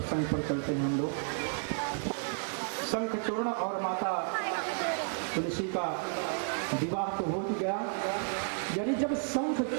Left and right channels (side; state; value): left; silent; 56 dB below the other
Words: पर चलते हैं हम लोग। शंखचूर्ण और माता तुलसी का विवाह तो हो ही गया। यानी जब